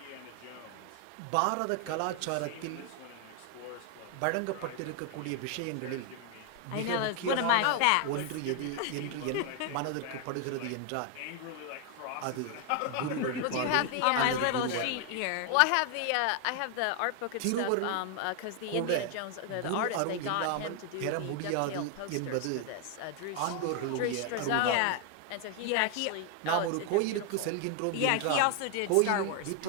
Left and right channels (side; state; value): both; different; correlation 0.00